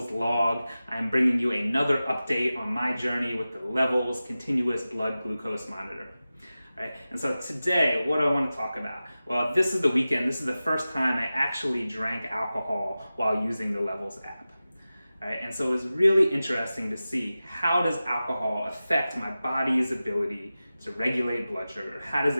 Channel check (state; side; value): inverted; both; correlation -0.95